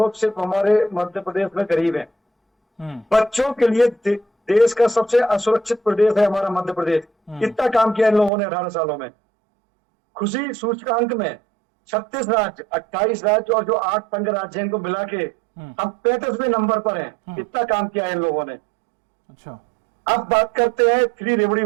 सिर्फ हमारे मध्य प्रदेश में गरीब हैं। बच्चों के लिए देश का सबसे असुरक्षित प्रदेश है हमारा मध्य प्रदेश। कितना काम किया इन लोगों ने 18 सालों में। खुशी सूचकांक में 36 राज्य, 28 राज्य और जो 8 संघ राज्य हैं इनको मिला के हम 35वें नंबर पर हैं। कितना काम किया है इन लोगों ने। अच्छा, अब बात करते हैं फ्री रेवड़ी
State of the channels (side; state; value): left; drops out; at 8.3 s